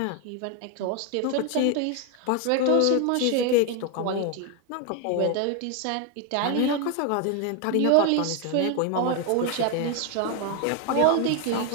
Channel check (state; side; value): different; both; correlation 0.01